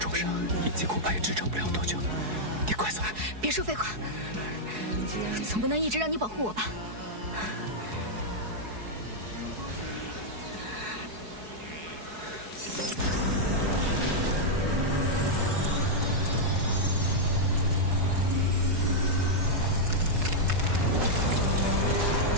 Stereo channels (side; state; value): left; late; 4.7 ms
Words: 伤，印记恐怕也支撑不了多久。你快走！别说废话，总不能一直让你保护我吧？